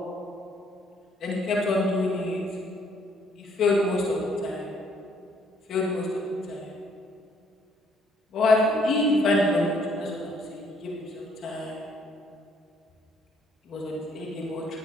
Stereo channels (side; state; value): both; normal; correlation 0.65